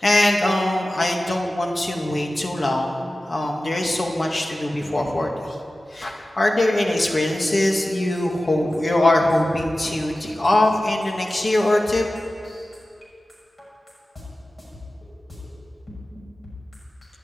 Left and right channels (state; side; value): normal; both; correlation 0.95